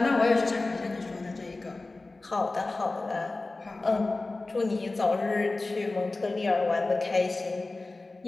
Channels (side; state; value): right; quieter; 3.3 dB